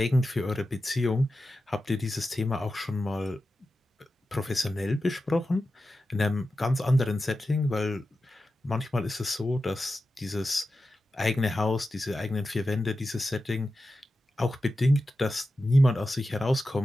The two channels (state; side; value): normal; both; correlation 0.92